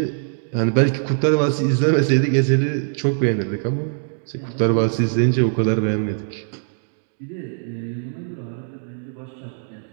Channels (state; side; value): silent; left; digital silence